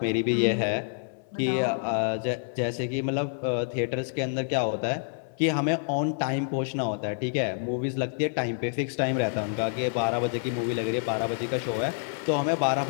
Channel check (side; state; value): right; silent; digital silence